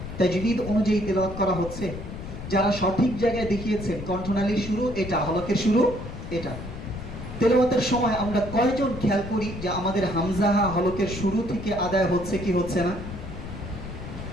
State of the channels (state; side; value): noise; left; rumble, 10 dB below the sound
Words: তাজবিদ অনুযায়ী তেলাওয়াত করা হচ্ছে? যারা সঠিক জায়গায় দেখিয়েছেন কণ্ঠনালীর শুরু এটা, হলকের শুরু এটা, তেলাওয়াতের সময় আমরা কয়জন খেয়াল করি যে আমাদের হামজাহা হলকের শুরু থেকে আদায় হচ্ছে কি হচ্ছে না?